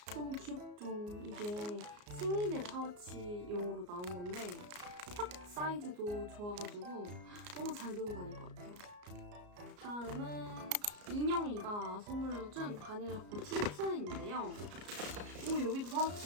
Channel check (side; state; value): left; late; 34 ms